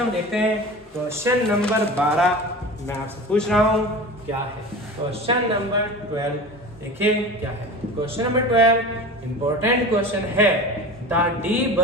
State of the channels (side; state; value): both; normal; correlation 0.34